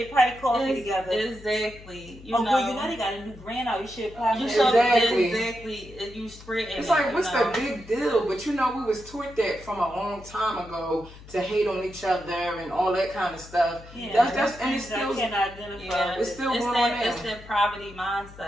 probably coffee together. Exactly. You Oh, know. girl, you know they got a new brand out. You should apply You for should that. exactly. You spread it's like, what's the big deal? But you know, we was taught that from a long time ago to hate on each other and all that kind of stuff. Yeah, That's and it's I still can identify Yeah, it's with. still going on that now. it's that poverty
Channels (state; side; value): noise; left; hum, 18 dB below the sound